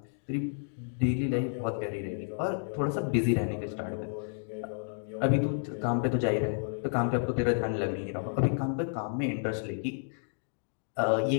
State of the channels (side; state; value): right; silent; digital silence